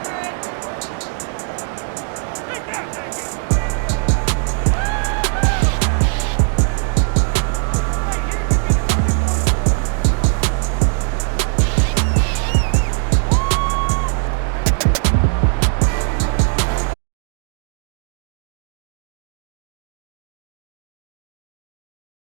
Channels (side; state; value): left; silent; digital silence